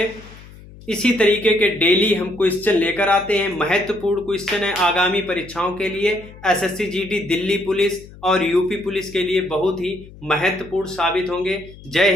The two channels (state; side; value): noise; left; hum, 19 dB below the sound